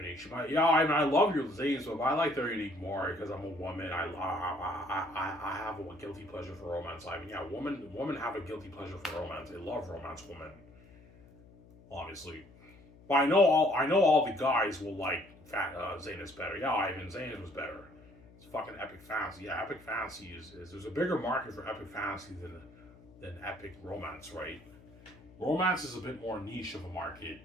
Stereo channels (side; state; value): left; noise; hum, 23 dB below the sound